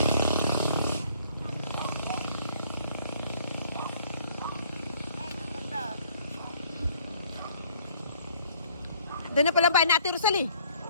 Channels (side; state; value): both; inverted; correlation -0.61